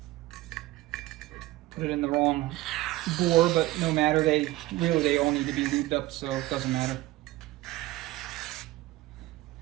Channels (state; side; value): quieter; left; 17.6 dB